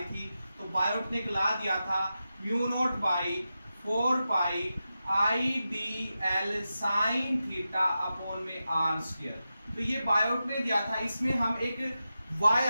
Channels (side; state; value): both; inverted; correlation -0.91